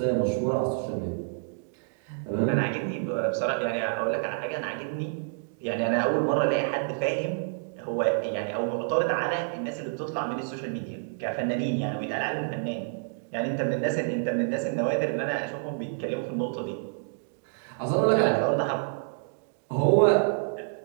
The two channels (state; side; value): silent; left; digital silence